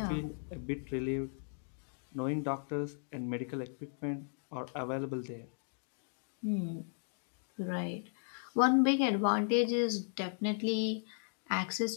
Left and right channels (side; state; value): right; silent; digital silence